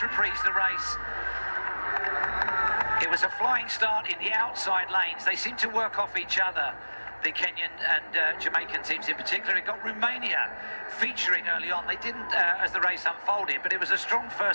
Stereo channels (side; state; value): both; inverted; correlation -1.00